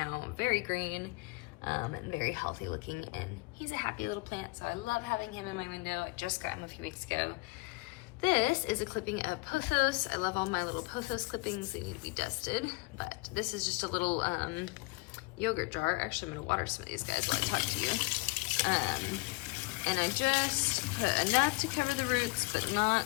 very green. And very healthy looking, and he's a happy little plant, so I love having him in my window. I just got him a few weeks ago. This is a clipping of pothos. I love all my little pothos clippings. They need to be dusted, but this is just a little yogurt jar. Actually, I'm gonna water some of these guys while I talk to you. And I just put enough to cover the roots, but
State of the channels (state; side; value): quieter; right; 24.8 dB